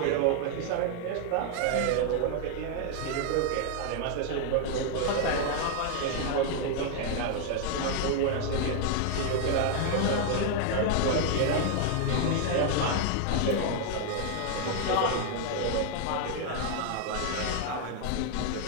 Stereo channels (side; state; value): both; different; correlation 0.00